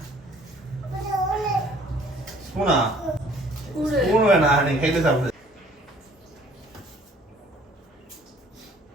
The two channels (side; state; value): both; normal; correlation 0.56